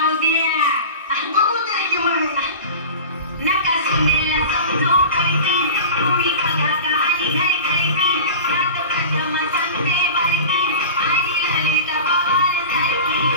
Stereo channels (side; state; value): both; inverted; correlation -0.34